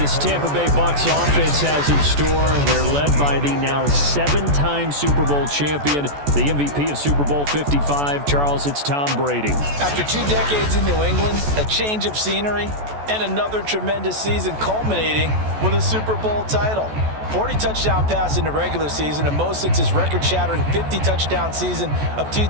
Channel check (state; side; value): late; left; 14 ms